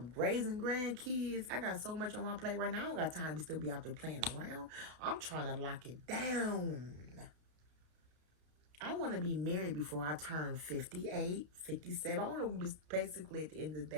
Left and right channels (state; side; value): late; left; 32 ms